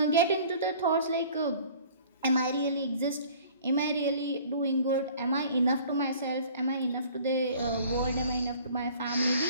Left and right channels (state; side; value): inverted; both; correlation -0.50